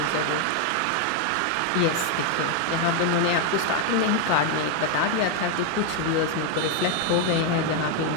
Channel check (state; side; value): different; both; correlation 0.01